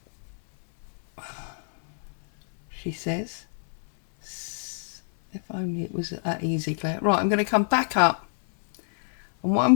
she says, if only it was that easy, Claire. Right, I'm going to come back up, and what I'm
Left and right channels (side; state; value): right; silent; 61 dB below the other